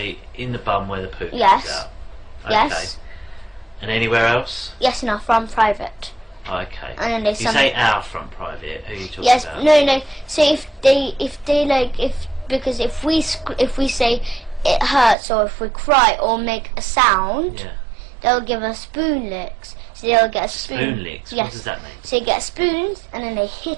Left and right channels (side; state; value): left; drops out; at 15.2 s